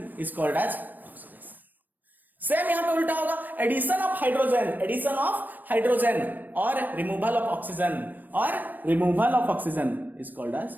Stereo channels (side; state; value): left; late; 0.089 ms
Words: is called as oxidation. Same यहां पे उल्टा होगा, एडिशन ऑफ हाइड्रोजन और removal of oxygen is called as